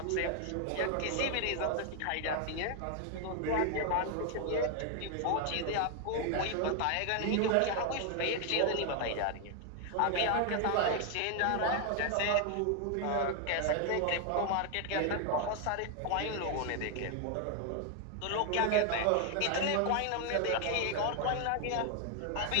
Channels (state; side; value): different; both; correlation 0.01